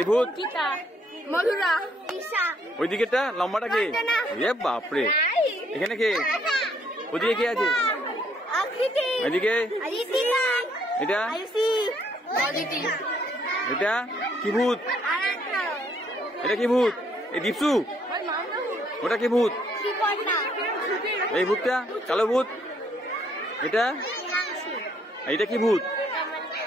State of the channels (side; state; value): both; normal; correlation 0.68